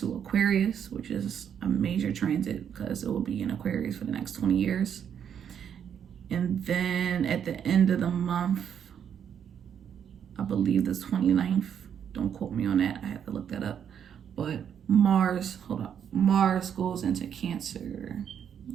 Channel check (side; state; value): left; quieter; 8.4 dB